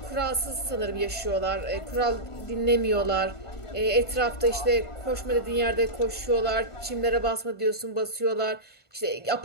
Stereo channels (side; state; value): right; late; 1.5 ms